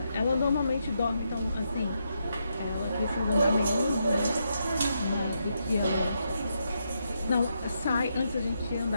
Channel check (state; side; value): inverted; both; correlation -0.81